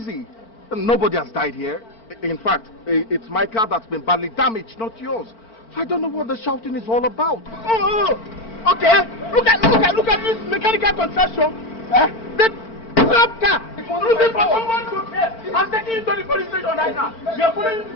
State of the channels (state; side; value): late; right; 4.4 ms